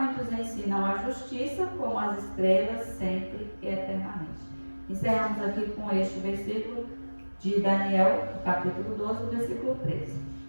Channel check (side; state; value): both; inverted; correlation -1.00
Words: ensinam a justiça, como as estrelas, sempre e eternamente. Encerramos aqui com este versículo de Daniel, capítulo 12, versículo 13.